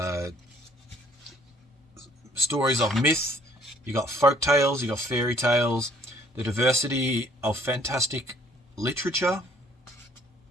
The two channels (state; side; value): normal; both; correlation 0.60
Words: stories of myth, you got folk tales, you got fairy tales, the diversity of fantastic literature.